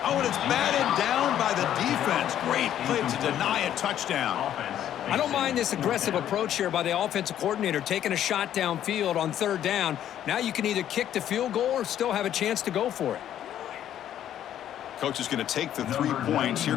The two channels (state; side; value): quieter; right; 10.9 dB